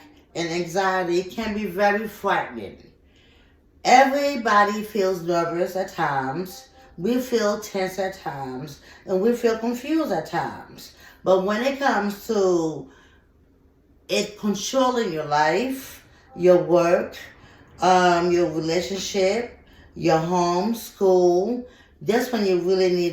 and anxiety can be very frightening. Everybody feels nervous at times. We feel tense at times, and we feel confused at times. But when it comes to it controlling your life, your work, your relationship, your home, school, that's when you really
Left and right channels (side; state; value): both; identical; correlation 1.00